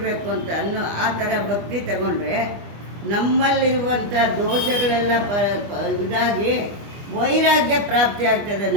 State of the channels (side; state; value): left; late; 25 ms